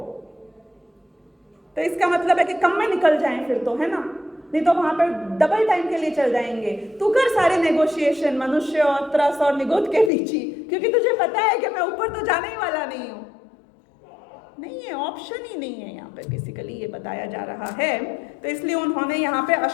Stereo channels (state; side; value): drops out; right; at 10.1 s